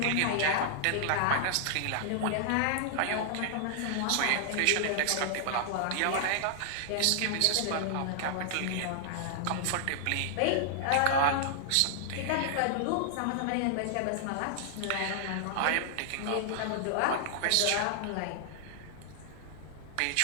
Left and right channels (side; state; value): both; different; correlation -0.01